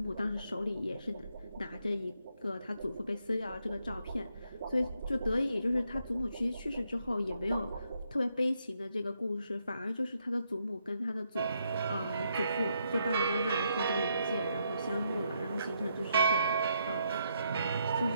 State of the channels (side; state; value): both; inverted; correlation -0.77